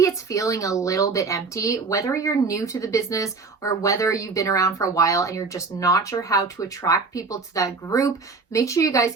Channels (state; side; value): quieter; left; 4.3 dB